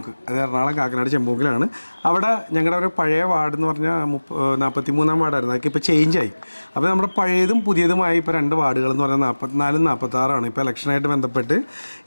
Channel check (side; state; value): both; inverted; correlation -1.00